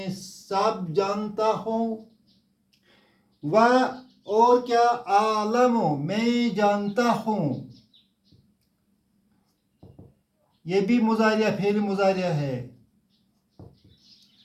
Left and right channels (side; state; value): both; identical; correlation 1.00